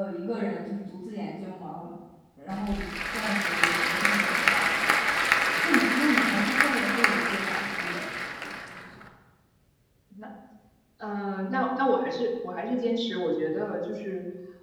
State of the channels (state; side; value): identical; both; correlation 1.00